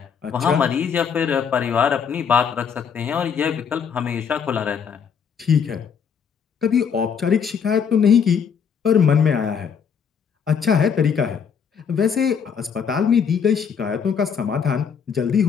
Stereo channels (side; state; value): right; quieter; 6.9 dB